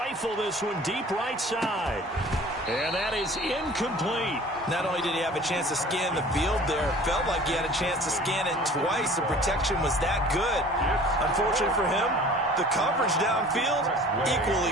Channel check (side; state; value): both; normal; correlation 0.46